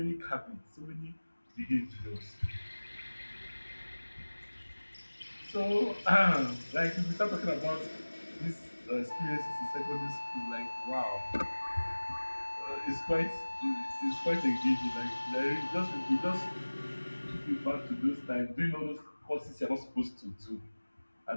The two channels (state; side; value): inverted; both; correlation -1.00